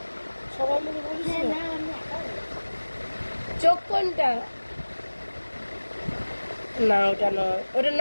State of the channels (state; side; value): inverted; both; correlation -1.00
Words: সবাই মিলে বলিস না। চোখ কোনটা? না ওটা নয়, ওটা